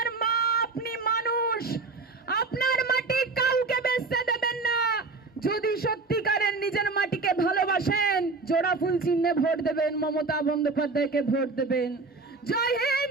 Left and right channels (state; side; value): quieter; left; 3.9 dB